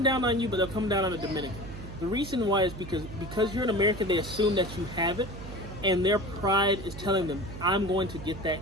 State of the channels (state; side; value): noise; right; hum, 11 dB below the sound